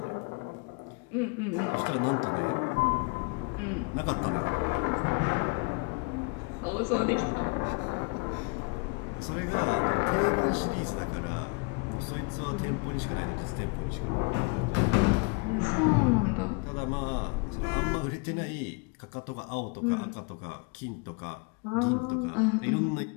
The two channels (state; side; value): quieter; right; 30.5 dB